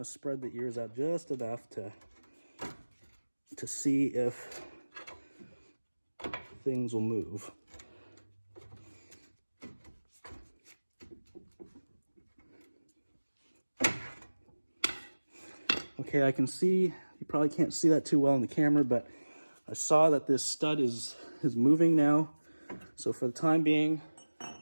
to spread the ears out just enough to see if things will move. Okay, I can see, you probably can't see that too well in the camera, but I saw that this stud is moving now. So for the time being,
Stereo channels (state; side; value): inverted; both; correlation -1.00